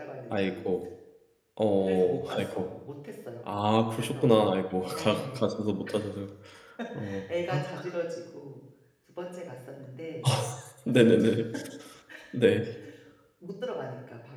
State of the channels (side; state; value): both; identical; correlation 1.00